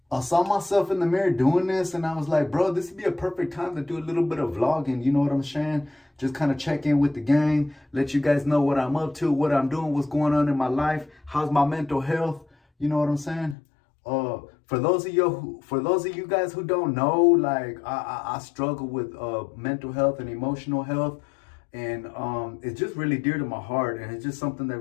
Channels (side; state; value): right; drops out; at 13.6 s